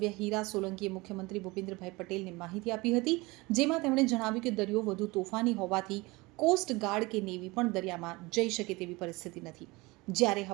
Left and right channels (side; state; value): left; quieter; 23.2 dB